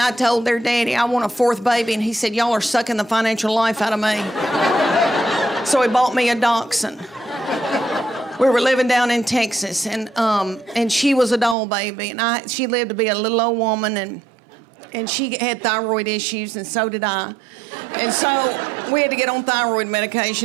told their daddy I want a 4th baby, and he said, y'all are sucking the financial life out of me. So he bought me a dachshund. We were living down in Texas, and she was a doll baby, and she lived to be a little old woman, and And she had thyroid issues, and so did I. And so we had to get on thyroid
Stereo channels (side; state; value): left; drops out; at 11.6 s